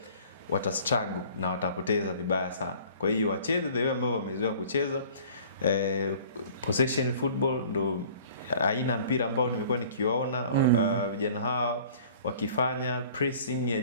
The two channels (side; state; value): both; inverted; correlation -0.49